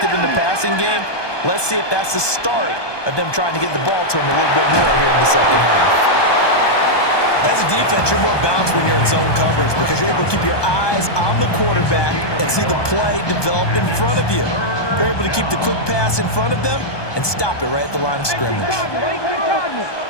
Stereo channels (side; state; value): right; late; 1.2 ms